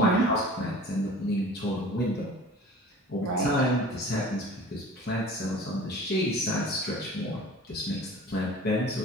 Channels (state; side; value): normal; both; correlation 0.42